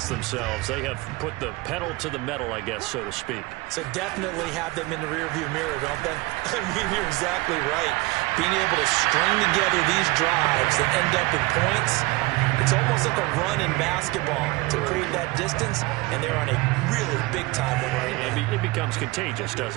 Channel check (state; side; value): quieter; left; 22.1 dB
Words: themselves. They have put the pedal to the metal, I guess, so to speak. So definitely have them in the rearview mirror, don't they? I mean, you're exactly right. Being able to string together these drives that end up in points, it's almost like a run in basketball to create that distance, and they're on a really big-time one right now. It becomes contagious,